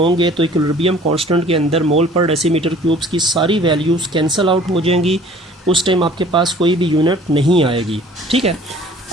तो इक्विलिब्रियम कांस्टेंट के अंदर मोल पर डेसीमीटर क्यूब्स की सारी वैल्यूज़ कैंसिल आउट हो जाएंगी. उस टाइम आपके पास कोई भी यूनिट नहीं आएगी. ठीक है.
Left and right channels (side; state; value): both; normal; correlation 0.51